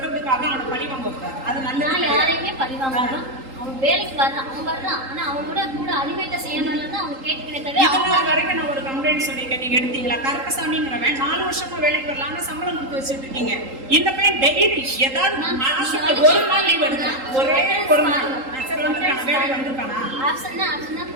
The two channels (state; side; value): late; left; 3.8 ms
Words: அவனை பழி வாங்க கூடாது. அது நல்ல யாரையுமே பழி வாங்கணும். அவன் வேலைக்கு வர்றான், அவன் வர்றான். ஆனா அவனோட கூட அனிமேட்டர் செய்யணும்ல தான் அவன் கேட்கிறேன். இதெல்லாம் வரைக்கும் நான் ஒரு கம்ப்ளைண்ட் சொல்லியிருக்கேன், நீங்க எடுத்தீங்களா? கருப்பசாமிங்கிறவன் 4 வருஷமா வேலைக்கு வரலாம்னு சம்பளம் கொடுத்து வச்சுட்டு இருக்கீங்க. இந்த பையன் டெய்லி ஏதாவது மாசத்துக்கு ஒரு நாள் லீவ் எடுக்கலாம், ஒரே ஒரு நாள். சரி வந்துருக்கானா? வேலைக்கு வந்துருக்கானா? ஆப்ஷன்